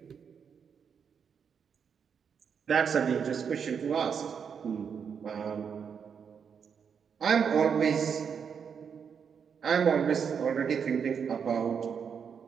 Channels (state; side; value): quieter; left; 6.9 dB